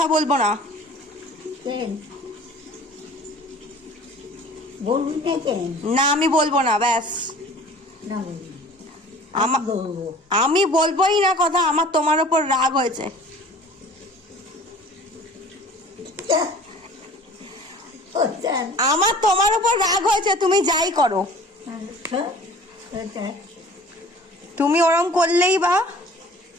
বলবো না। কেন বলবি না কেন? না আমি বলবো না, ব্যাস। না বলবি, আমা- বলবো। আমি বলবোই না কথা। আমার তোমার ওপর রাগ হয়েছে। আমার তোমার ওপর রাগ হয়েছে, তুমি যাই করো। তুমি ওরম করলেই বা,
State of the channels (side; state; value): both; normal; correlation 0.46